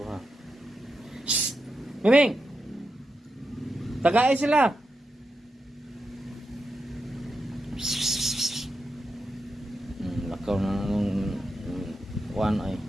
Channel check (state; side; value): normal; both; correlation 0.87